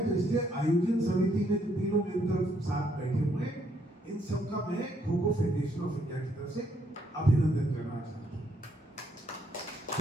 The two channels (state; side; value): normal; both; correlation 0.72